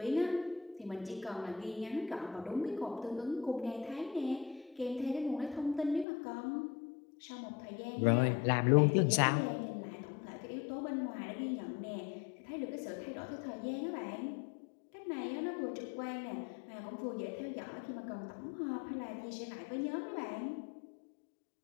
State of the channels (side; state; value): right; drops out; at 6.1 s